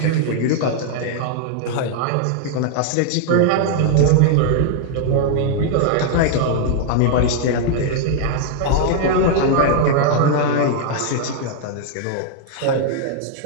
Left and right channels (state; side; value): different; both; correlation 0.00